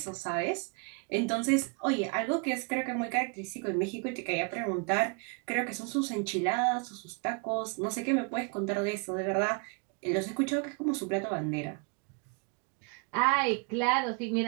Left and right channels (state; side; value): quieter; left; 34.9 dB